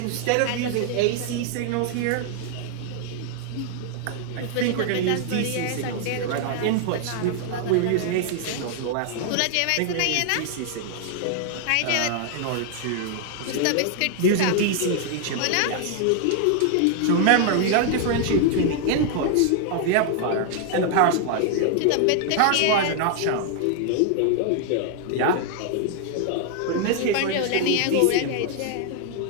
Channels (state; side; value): different; both; correlation 0.00